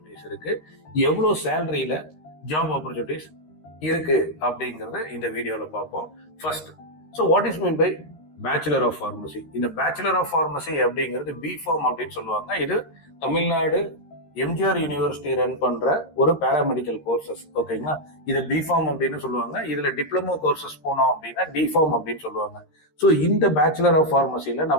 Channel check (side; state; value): right; late; 13 ms